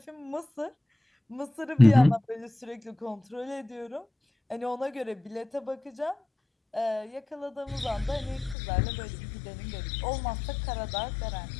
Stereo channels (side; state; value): right; drops out; at 8.6 s